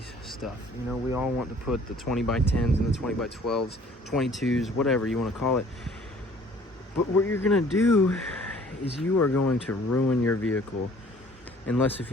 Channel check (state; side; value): normal; both; correlation 0.54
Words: stuff. You know, we all want to put the 20 by 10s and the 20 by 12s, 22s, whatever you want to call it. But what you're gonna do is you are going to ruin your vehicle unless if